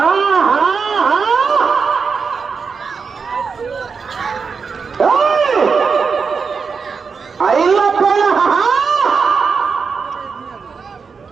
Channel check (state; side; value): quieter; left; 5.4 dB